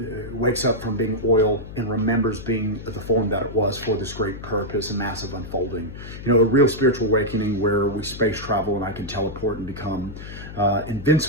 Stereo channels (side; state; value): left; noise; hum, 12 dB below the sound